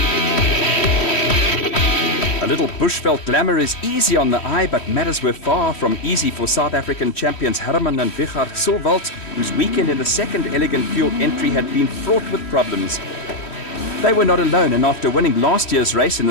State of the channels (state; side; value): late; right; 3.1 ms